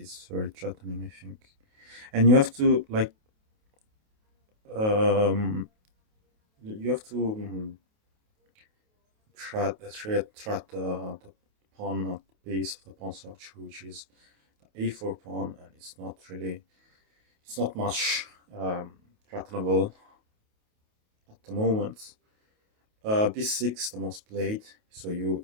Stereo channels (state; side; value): late; left; 28 ms